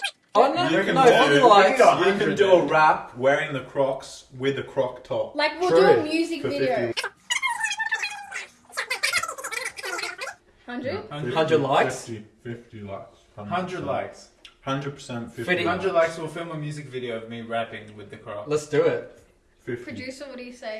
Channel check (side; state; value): both; identical; correlation 1.00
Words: Oh no, You can no, do- probably you like. can go. you can do a rap wearing the Crocs with a Croc top. Like, we'll True. do a music For video. 50. 100? 100 likes? 50 likes. 100 likes. 100% 50. 50. 100 likes, we'll film a music video of me rapping with the Crocs. Let's do it. 50. Producer, what do you